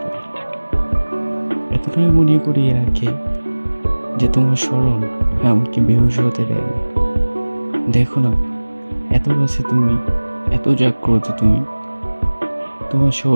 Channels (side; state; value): both; inverted; correlation -1.00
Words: পারি। এতটাই মনে করিয়ে রাখে যে তোমার স্মরণ আমাকে বেহুশ হতে দেয় না। দেখো না, এত কাছে তুমি, এত জাগ্রত তুমি, তোমার